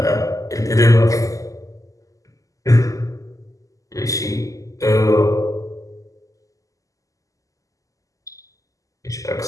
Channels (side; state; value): right; late; 0.16 ms